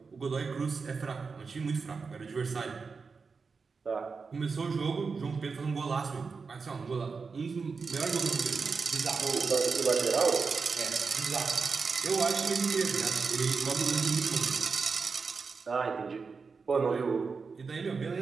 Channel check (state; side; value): quieter; left; 4.9 dB